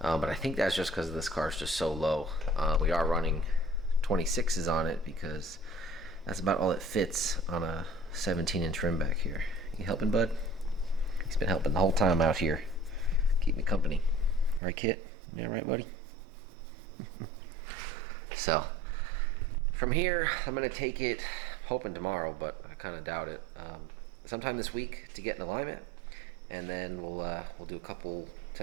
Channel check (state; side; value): drops out; left; at 14.6 s